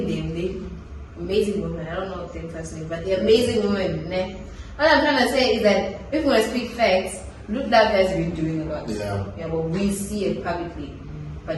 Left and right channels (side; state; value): both; identical; correlation 1.00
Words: them. They amazing women. I don't know them personally, but they're amazing women. Ne? What I'm trying to say is that if we want to speak facts, Look Love has been doing a lot. Yeah. But we see it publicly.